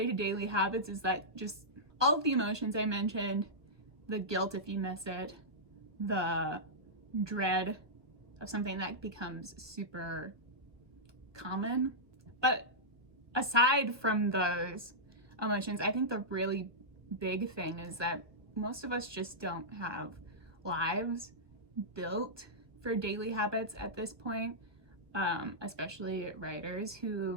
to daily habits is that just all of the emotions I mentioned, the guilt if you miss it, the dread of something that becomes super common. But aside from those emotions, I think the really big thing is that most of us just don't have lives built for daily habits at this point, especially writers who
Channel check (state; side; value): late; left; 1.5 ms